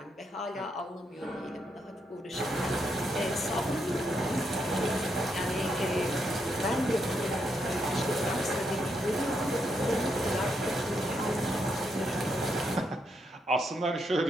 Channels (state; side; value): normal; both; correlation 0.79